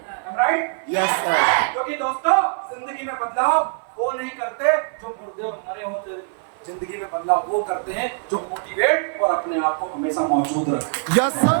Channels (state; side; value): silent; left; 55 dB below the other